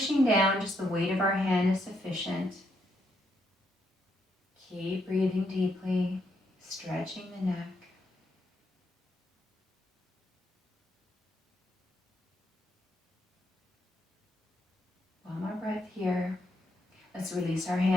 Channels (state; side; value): normal; both; correlation 0.77